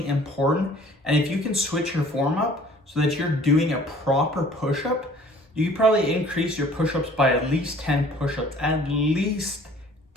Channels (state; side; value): normal; both; correlation 0.52